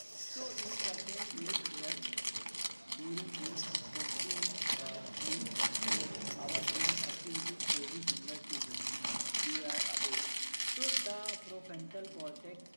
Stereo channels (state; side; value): inverted; both; correlation -1.00